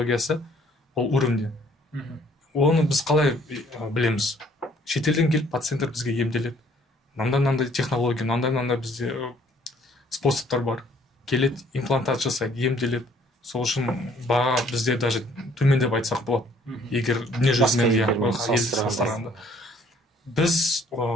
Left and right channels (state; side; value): normal; both; correlation 0.60